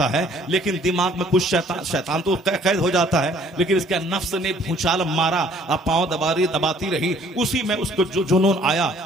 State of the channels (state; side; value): normal; both; correlation 0.59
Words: है, लेकिन दिमाग में कुछ शैतान तो कैद हो जाता है, लेकिन इसके नफ्स ने भूचाल मारा, अब पांव दबाती रही। उसी में उसको जो जुनून आया।